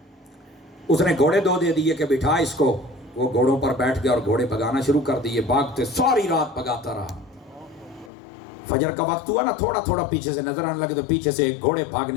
اس نے گھوڑے دو دے دیے کہ بٹھا اس کو. وہ گھوڑوں پر بیٹھ گیا اور گھوڑے بھگانا شروع کر دیے. بھاگتے ساری رات بھگاتا رہا. فجر کا وقت ہوا نا, تھوڑا تھوڑا پیچھے سے نظر آنے لگے تو پیچھے سے گھوڑے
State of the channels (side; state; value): right; drops out; at 8.1 s